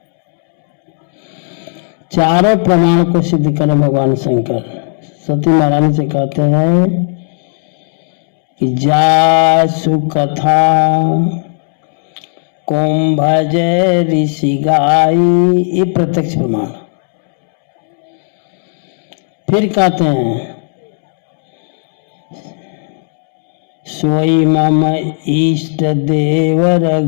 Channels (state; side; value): silent; right; digital silence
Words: चारों प्रमाण को सिद्ध करें भगवान शंकर। सती महारानी से कहते हैं कि जासु कथा कुंभज ऋषि गाई, ये प्रत्यक्ष प्रमाण। फिर कहते हैं सोई मम इष्ट देव